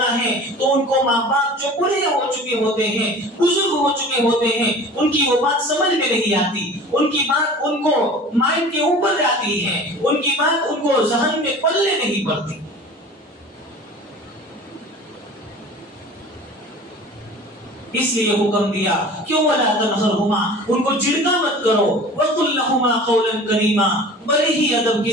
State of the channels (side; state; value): both; normal; correlation 0.41